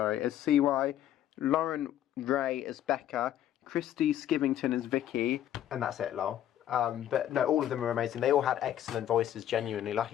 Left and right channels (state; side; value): quieter; right; 11.5 dB